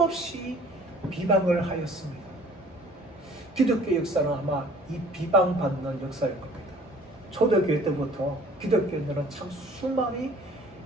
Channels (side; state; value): both; normal; correlation 0.52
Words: 비방을 하였습니다. 기독교 역사는 아마 이 비방받는 역사일 겁니다. 초대교회 때부터 기독교인들은 참 수많이